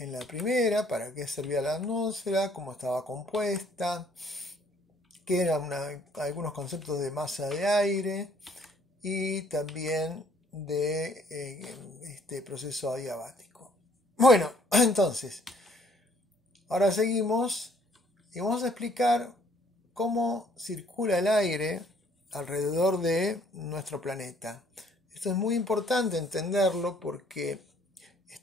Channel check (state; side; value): normal; both; correlation 0.62